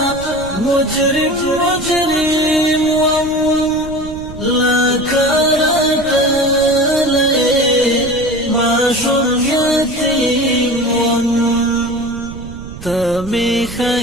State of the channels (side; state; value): right; noise; rumble, 14 dB below the sound